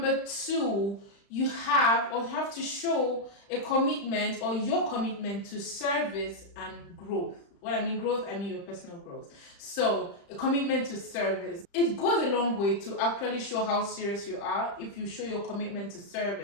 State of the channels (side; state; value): right; late; 35 ms